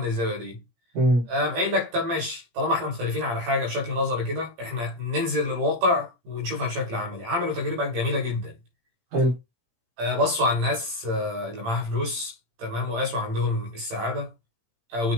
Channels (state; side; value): late; left; 17 ms